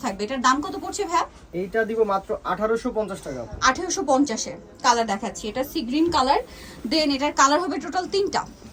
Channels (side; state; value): both; identical; correlation 1.00